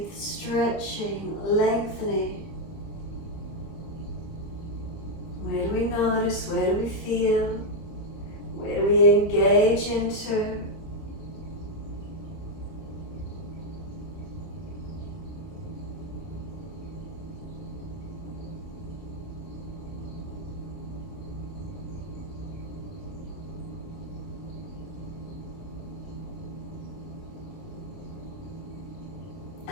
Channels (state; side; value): late; right; 29 ms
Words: stretching, lengthening. Where do we notice? Where do we feel? Where do we engage into?